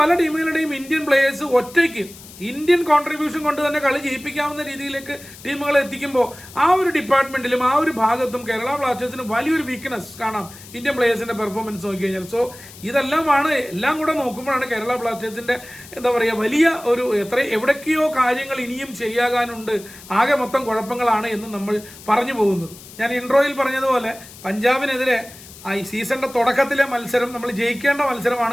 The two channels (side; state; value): left; noise; hiss, 18 dB below the sound